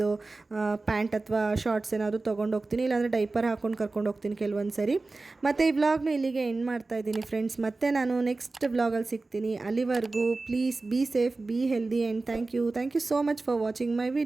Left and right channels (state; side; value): quieter; left; 3.5 dB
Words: ಪ್ಯಾಂಟ್ ಅಥವಾ ಶಾರ್ಟ್ಸ್ ಏನಾದರೂ ತೊಗೊಂಡು ಹೋಗ್ತೀನಿ, ಇಲ್ಲಾಂದರೆ ಡೈಪರ್ ಹಾಕ್ಕೊಂಡು ಕರ್ಕೊಂಡು ಹೋಗ್ತೀನಿ ಕೆಲವೊಂದು ಸರಿ. ಮತ್ತು ಈ ವ್ಲಾಗ್ನ ಇಲ್ಲಿಗೆ ಎಂಡ್ ಮಾಡ್ತಾ ಇದ್ದೀನಿ ಫ್ರೆಂಡ್ಸ್. ಮತ್ತೆ ನಾನು ನೆಕ್ಸ್ಟ್ ವ್ಲಾಗಲ್ಲಿ ಸಿಗ್ತೀನಿ. ಅಲ್ಲಿವರೆಗೂ please be safe, be healthy and thank you so much for watching my